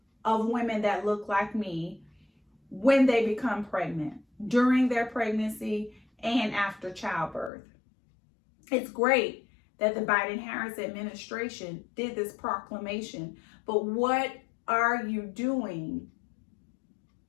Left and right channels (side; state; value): right; drops out; at 7.5 s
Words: of women that look like me when they become pregnant, during their pregnancy, and after childbirth? It's great that the Biden-Harris administration did this proclamation, but what are you doing